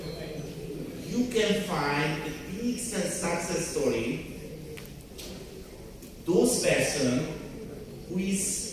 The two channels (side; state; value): both; identical; correlation 1.00